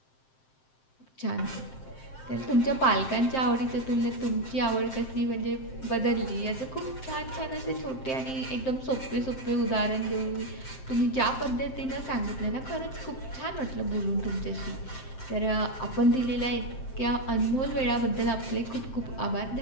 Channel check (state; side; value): late; right; 7.7 ms